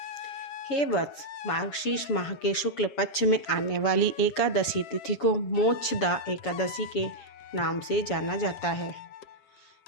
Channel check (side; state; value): right; late; 7.1 ms